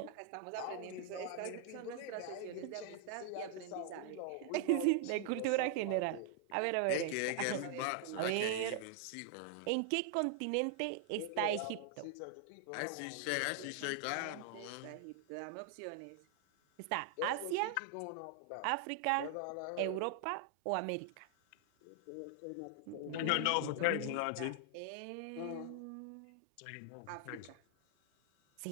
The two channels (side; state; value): both; different; correlation 0.00